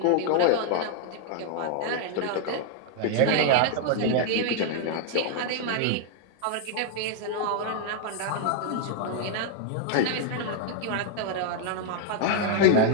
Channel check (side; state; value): both; different; correlation 0.00